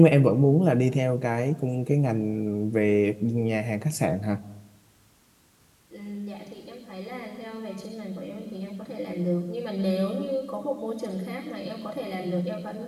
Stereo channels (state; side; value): identical; both; correlation 1.00